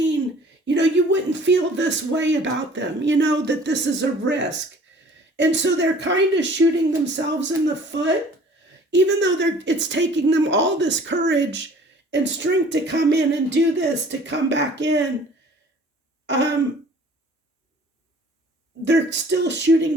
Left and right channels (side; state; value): both; normal; correlation 0.50